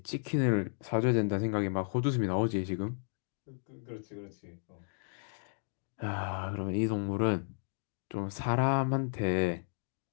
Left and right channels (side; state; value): right; silent; digital silence